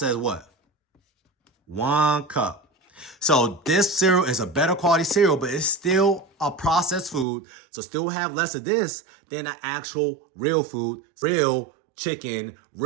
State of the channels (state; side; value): drops out; left; at 7.2 s